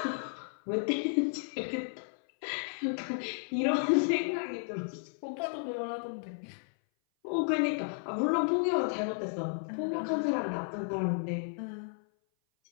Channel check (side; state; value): right; silent; 56 dB below the other